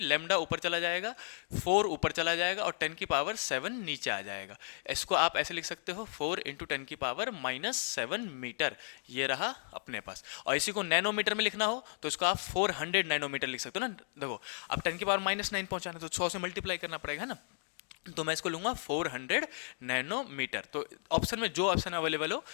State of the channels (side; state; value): right; silent; digital silence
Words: लैम्डा ऊपर चला जाएगा, 4 ऊपर चला जाएगा और 10⁻7 नीचे आ जाएगा। इसको आप ऐसे लिख सकते हो 4 × 10⁻⁻7 मीटर, ये रहा अपने पास। और इसी को नैनोमीटर में लिखना हो तो इसको आप 400 नैनोमीटर लिख सकते हो ना। देखो अब 10⁻�9 पहुंचाना तो 100 से मल्टीप्लाई करना पड़ेगा, है ना। तो मैं इसको लूंगा 400 नैनोमीटर। तो ऑप्शन में जो ऑप्शन अवेलेबल हो,